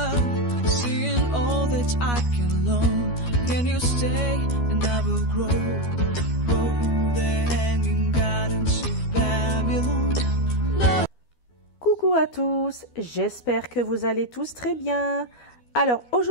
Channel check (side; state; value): right; late; 12 ms